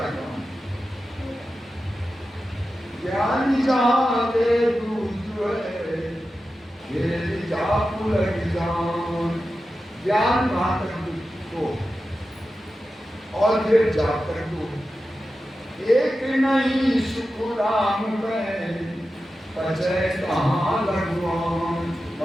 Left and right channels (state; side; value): normal; both; correlation 0.92